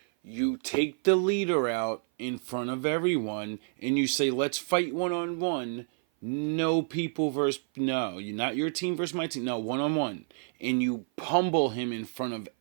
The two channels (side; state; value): left; silent; 56 dB below the other